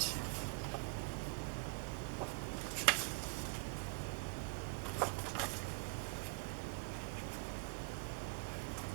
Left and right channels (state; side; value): quieter; left; 32.9 dB